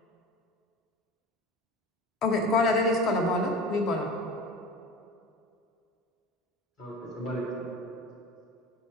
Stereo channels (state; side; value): normal; both; correlation 0.34